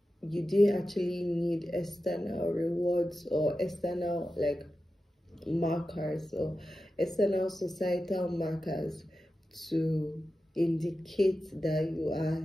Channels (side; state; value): both; normal; correlation 0.92